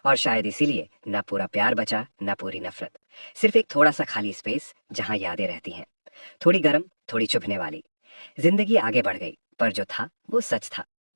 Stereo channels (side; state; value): both; inverted; correlation -1.00